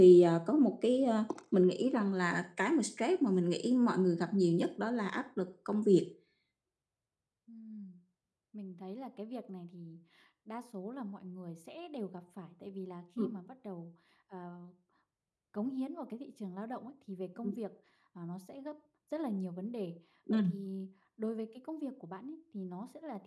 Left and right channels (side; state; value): both; identical; correlation 1.00